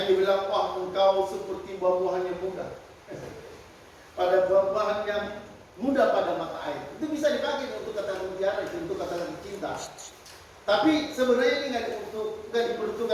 dibilang, wah engkau seperti buah-buahan yang muda. Pada buah-buahan yang muda pada mata air. Itu bisa dipakai untuk kata mutiara, untuk kata-kata cinta. Tapi sebenarnya ini nggak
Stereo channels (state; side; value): identical; both; correlation 1.00